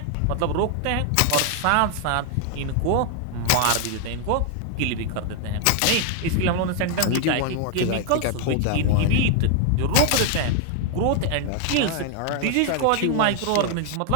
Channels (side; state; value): both; different; correlation 0.00